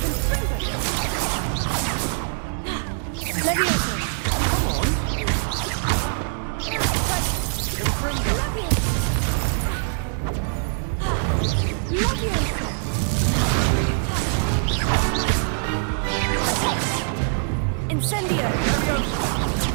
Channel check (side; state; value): left; silent; 63 dB below the other